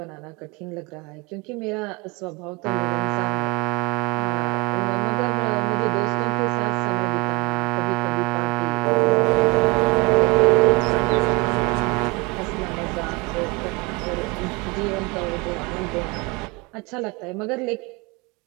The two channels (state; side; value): quieter; left; 27.1 dB